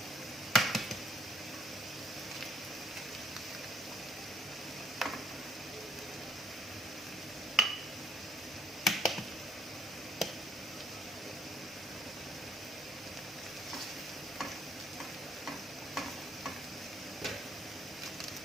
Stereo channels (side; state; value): both; normal; correlation 0.65